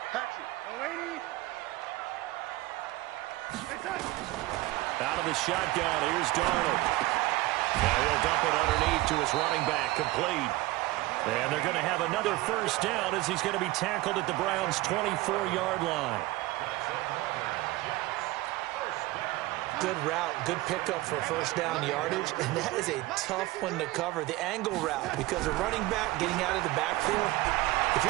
Out of the shotgun, here's Darnold. Now he'll dump it underneath to his running back, complete. And they're going to have another 1st down as he's going to be tackled at the Browns' 24-yard line. Good route, good pickup for 1st down yardage, and that is a tough one to cover. The angle route, because a running back getting out of the backfield, if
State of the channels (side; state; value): left; quieter; 19.2 dB